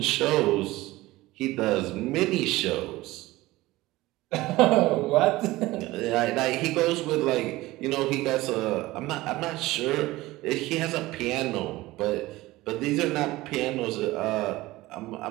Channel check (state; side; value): quieter; left; 18.7 dB